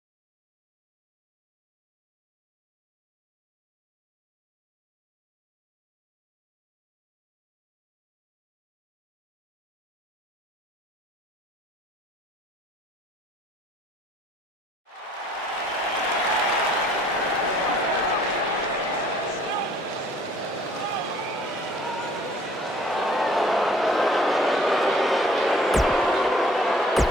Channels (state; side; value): normal; both; correlation 0.57